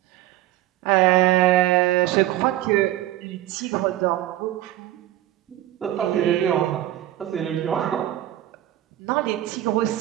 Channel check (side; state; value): left; quieter; 14.0 dB